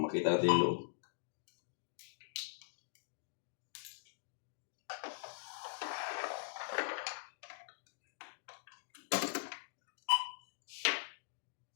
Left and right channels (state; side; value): silent; right; digital silence